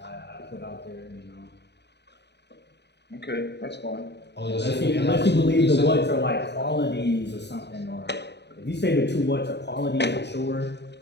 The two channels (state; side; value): late; right; 0.50 ms